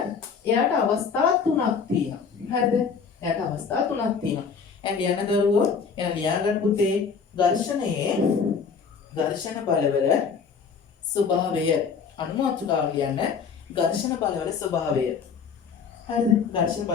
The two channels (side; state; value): right; quieter; 5.9 dB